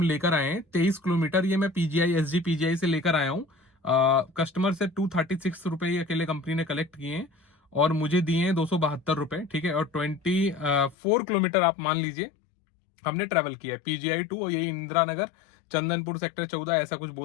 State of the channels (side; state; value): right; drops out; at 11.0 s